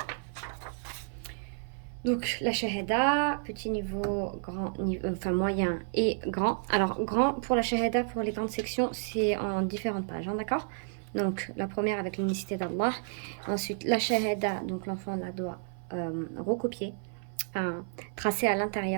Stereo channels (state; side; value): silent; left; 57 dB below the other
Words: Donc la shahada, petit niveau, grand niveau, enfin moyen et grand. Alors grand pour la shahada, pour les grandes sections, c'est en différentes pages, hein, d'accord? Donc la première avec l'unicité d'Allah. Ensuite la shahada, donc l'enfant la doit recopier, enfin tracer à